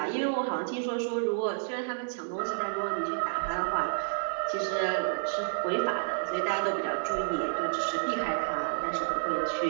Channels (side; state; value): left; silent; 58 dB below the other